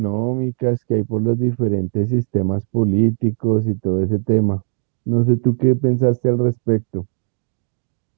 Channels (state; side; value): silent; left; 66 dB below the other